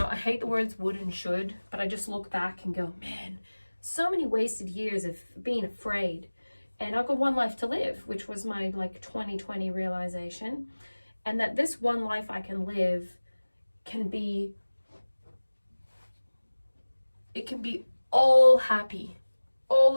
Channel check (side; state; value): both; inverted; correlation -1.00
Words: hate the words would and should, but I just look back and go, man, so many wasted years of being afraid. And I've got one life to live, which was my 2020 realization. And that this one life I can live can be all happy.